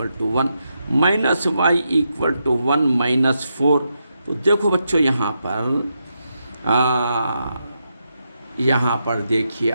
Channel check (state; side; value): inverted; both; correlation -0.84